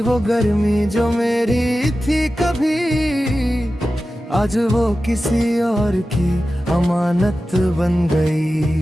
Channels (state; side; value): normal; both; correlation 0.94